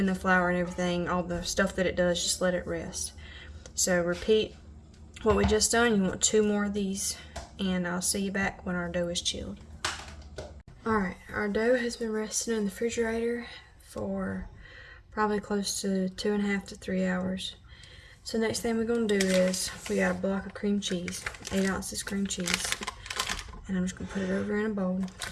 the flour and everything, all the stuff that it does, just let it rest. So repeat what we just done. You want 2 more of these, and I'll see you back when our dough is chilled. Alright, our dough has been resting in the refrigerator for probably close to 2.5 to 3 hours. So next thing we're going to do is, we got a block of cream cheese, 8 ounces cream cheese, and I'm just going to put it over in a bowl.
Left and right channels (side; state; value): both; identical; correlation 1.00